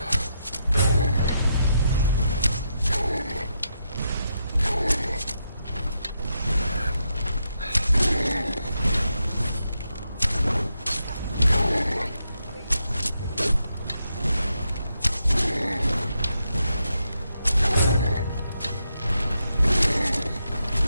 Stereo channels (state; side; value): inverted; both; correlation -0.82